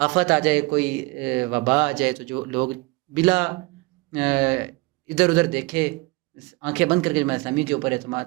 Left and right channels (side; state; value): left; quieter; 24.1 dB